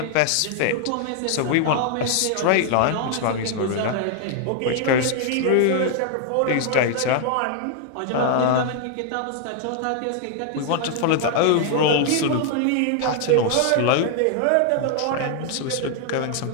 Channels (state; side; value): different; both; correlation 0.00